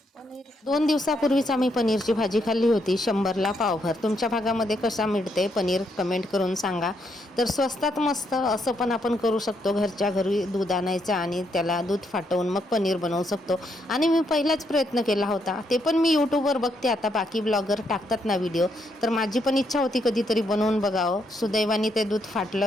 2 दिवसापूर्वीच आम्ही पनीरची भाजी खाल्ली होती, 100ला पावभर. तुमच्या भागामध्ये कशा मिळते पनीर कमेंट करून सांगा. तर स्वस्तात मस्त असं पण आपण करू शकतो. घरच्या घरी दूध आणायचं आणि त्याला दूध फाटवून मग पनीर बनवू शकतो. आणि मी पहिलाच प्रयत्न केला होता, ते पण मी यूट्यूबवर बघते. आता बाकी ब्लॉगर टाकतात ना व्हिडिओ, तर माझी पण इच्छा होती कधीतरी बनवून बघावं. सुदैवाने ते दूध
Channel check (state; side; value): normal; both; correlation 0.76